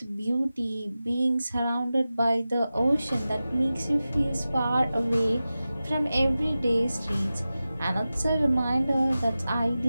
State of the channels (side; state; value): both; inverted; correlation -0.95